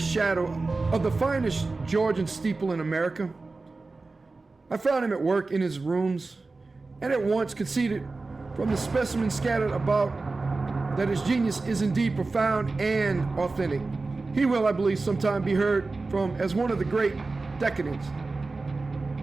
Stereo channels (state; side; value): quieter; left; 3.6 dB